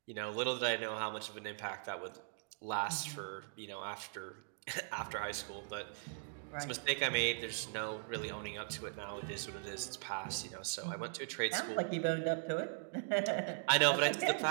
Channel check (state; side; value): silent; left; digital silence